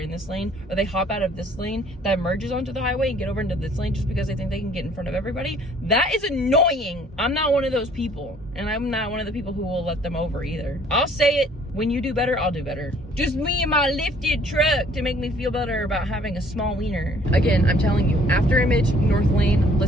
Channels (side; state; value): both; normal; correlation 0.58